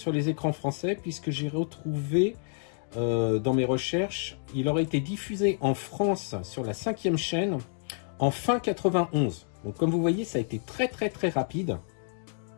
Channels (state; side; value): silent; right; digital silence